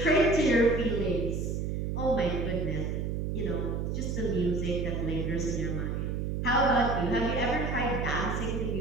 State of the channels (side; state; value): right; noise; hum, 1 dB below the sound